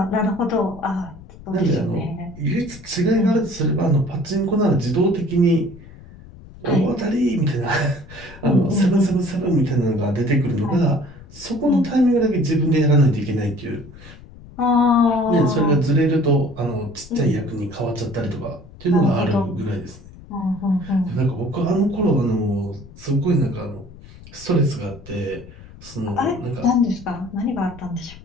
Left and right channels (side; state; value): left; noise; rumble, 19 dB below the sound